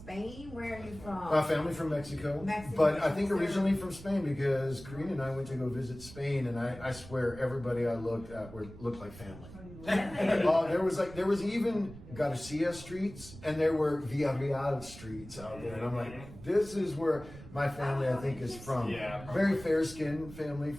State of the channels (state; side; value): noise; right; rumble, 16 dB below the sound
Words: Where are you from? family from Mexico, Mexico. but I think originally from Spain because Karina and I went to go visit Spain, and I swear everybody I looked at looked like family. There was even Garcia streets, and there were Villarreal streets out there, and I'm like, this is where my family I think is from. Yeah. Very fair skinned family